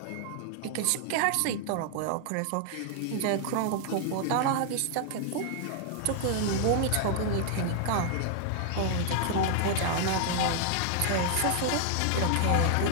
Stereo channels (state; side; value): different; both; correlation 0.00